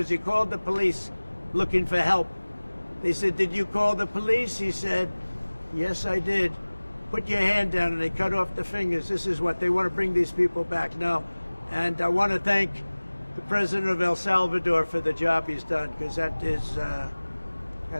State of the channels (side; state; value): both; inverted; correlation -1.00